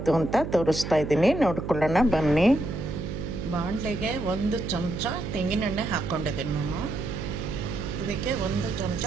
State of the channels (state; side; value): noise; right; hum, 6 dB below the sound